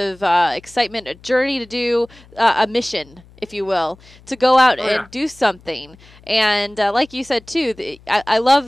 excitement, a journey to do, a mission, if you will, to go out and do something. And like you said too, I love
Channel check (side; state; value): left; noise; hum, 25 dB below the sound